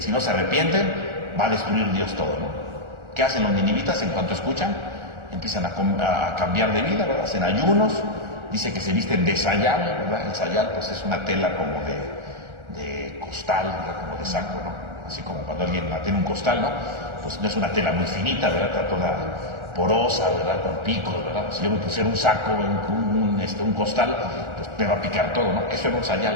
no se arrepienten, va a destruir Dios todo, ¿no? ¿Qué hacen los ninivitas en cuanto escuchan? Empiezan a cambiar de vida, ¿verdad? Hacen ayunos, dice que se visten de sayal, ¿verdad? El sayal pues es una tela como de costal, ¿verdad?, como de saco, ¿no? Así como cuando alguien tiene un costal, ¿no? Pues no es una tela muy finita, ¿verdad? Está toda porosa, ¿verdad?, con picos, ¿verdad? Si yo me pusiera un saco, un costal, pues me va a picar todo, ¿no? Eso era un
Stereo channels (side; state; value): left; late; 1.4 ms